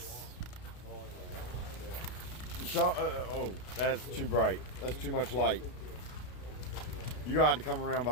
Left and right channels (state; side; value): late; right; 32 ms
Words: Oh, that's too bright. That's too much light. You're gonna have to come around